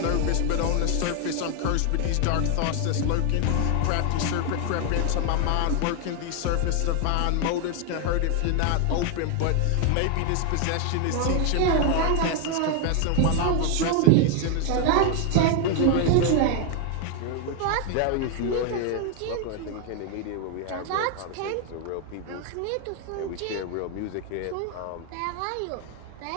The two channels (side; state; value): both; different; correlation 0.01